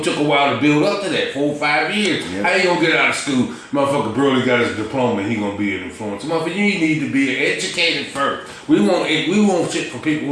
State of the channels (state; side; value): identical; both; correlation 1.00